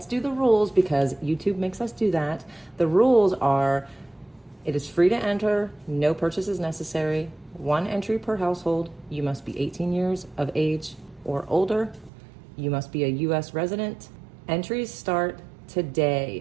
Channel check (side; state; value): left; drops out; at 12.1 s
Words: do the rules because YouTube makes us do that. The rules are, it is free to enter, no purchase is necessary, 1 entry per household, you must be 18 years of age or older, you must be a US resident. Entries start